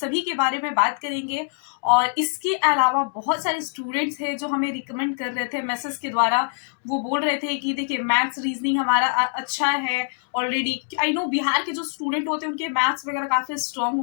के बारे में बात करेंगे। और इसके अलावा बहुत सारे स्टूडेंट्स हैं जो हमें रिकमेंड कर रहे थे मैसेज के द्वारा। वो बोल रहे थे कि देखिए, मैथ्स रीजनिंग हमारा अच्छा है ऑलरेडी। आई नो बिहार के जो स्टूडेंट होते हैं उनके मैथ्स वगैरह काफी स्ट्रांग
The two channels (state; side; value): silent; right; 63 dB below the other